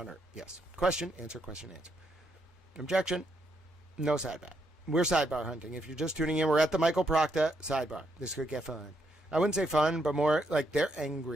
Yes. Question, answer, question, answer. Objection. No sidebar. We're sidebar hunting. If you're just tuning in, we're at the Michael Proctor sidebar. This could get fun. I wouldn't say fun, but more like they're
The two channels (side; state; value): both; normal; correlation 0.77